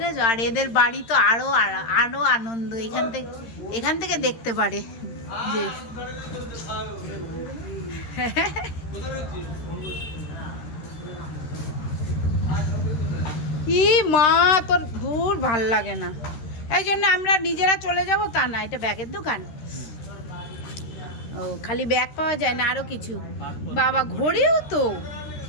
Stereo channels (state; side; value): late; right; 13 ms